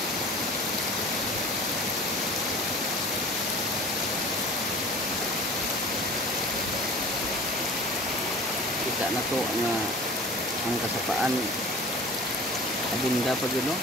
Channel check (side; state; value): both; normal; correlation 0.41